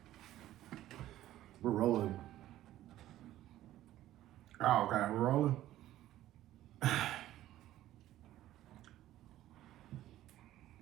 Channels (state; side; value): quieter; left; 13.9 dB